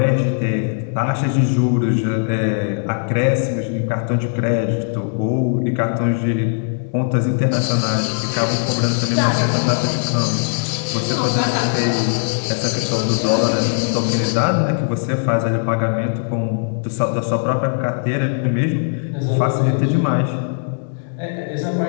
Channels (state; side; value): silent; right; 66 dB below the other